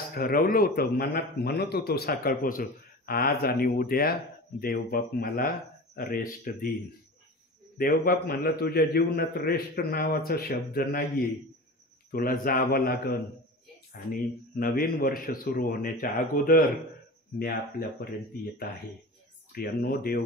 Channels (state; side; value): normal; both; correlation 0.33